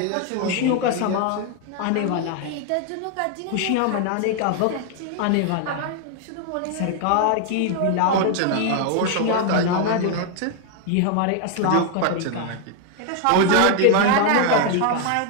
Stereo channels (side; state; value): both; different; correlation 0.00